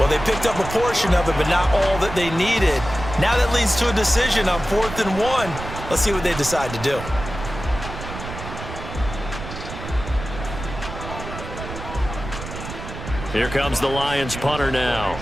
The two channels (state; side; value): noise; right; rumble, 9 dB below the sound